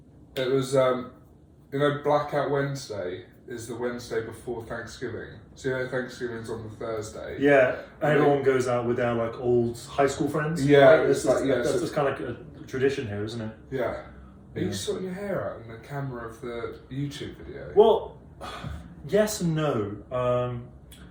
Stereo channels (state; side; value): identical; both; correlation 1.00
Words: It was, Blackout Wednesday is the Wednesday before Thanksgiving. So Thanksgiving's on the Thursday. Yeah, and everyone goes out with their like old high school friends. Yeah, right? That's just kind of like a tradition here, isn't it? Yeah. Are you sorting your hair out in the camera of the YouTube video? Well, yes and no.